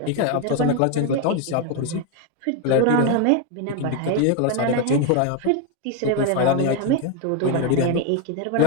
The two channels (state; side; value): different; both; correlation 0.01